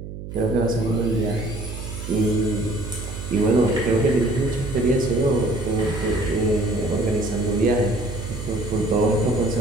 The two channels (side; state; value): right; noise; hum, 10 dB below the sound